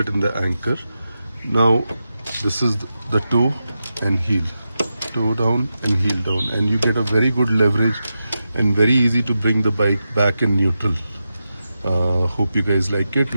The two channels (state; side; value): inverted; both; correlation -0.90